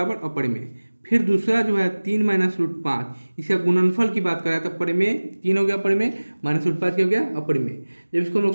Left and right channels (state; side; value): inverted; both; correlation -1.00